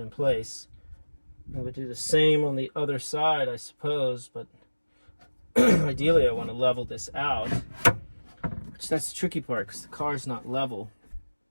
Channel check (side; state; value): both; inverted; correlation -1.00